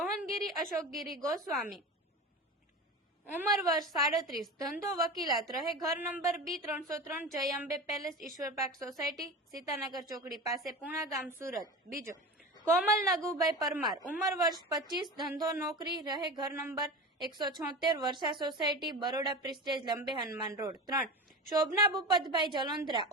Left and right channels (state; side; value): normal; both; correlation 0.29